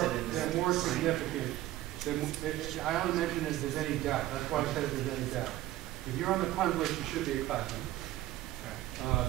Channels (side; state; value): left; quieter; 15.2 dB